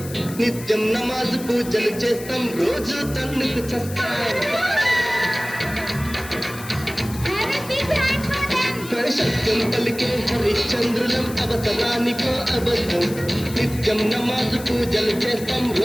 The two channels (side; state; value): left; noise; hiss, 14 dB below the sound